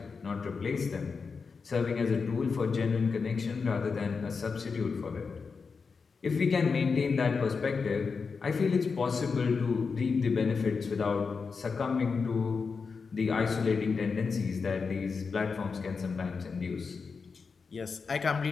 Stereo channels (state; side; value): quieter; right; 5.1 dB